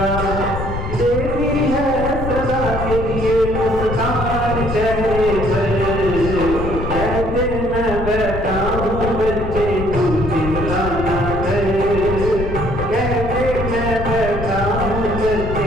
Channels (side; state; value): left; noise; rumble, 5 dB below the sound